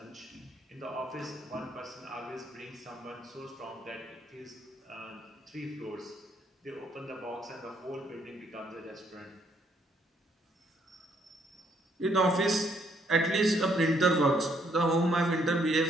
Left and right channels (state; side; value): normal; both; correlation 0.70